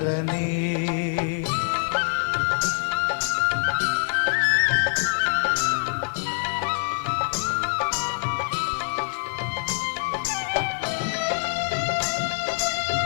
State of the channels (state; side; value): silent; right; digital silence